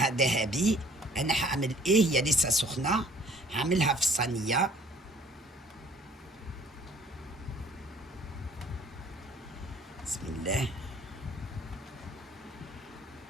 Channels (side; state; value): both; normal; correlation 0.56